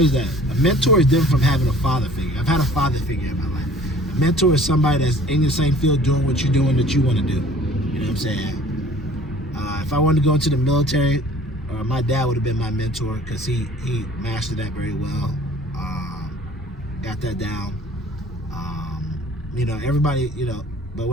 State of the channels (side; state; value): both; normal; correlation 0.50